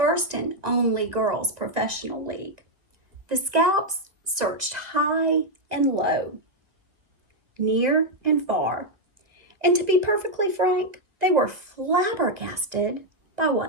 and only girls' professional league. The Scouts searched high and low, near and far, and to be perfectly frank, they were flabbergasted by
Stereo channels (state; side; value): late; left; 2.0 ms